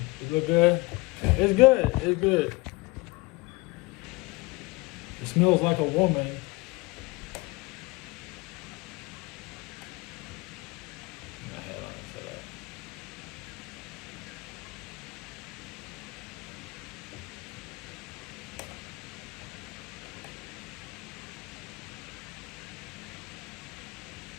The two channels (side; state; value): right; quieter; 23.6 dB